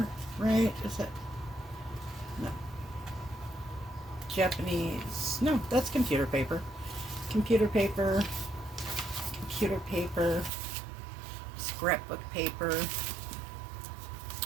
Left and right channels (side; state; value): left; drops out; at 10.5 s